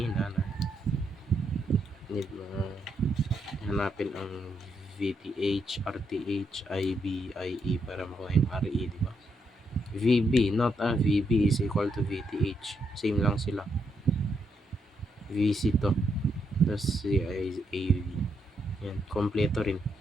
na need mo hanapin ang VTH, RTH, IB, IE para makuha yung RE, di ba? VB, not VB is equal to VTH. Same lang sila. VC to. Tapos AV. Yan, kompleto rin.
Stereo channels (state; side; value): normal; both; correlation 0.79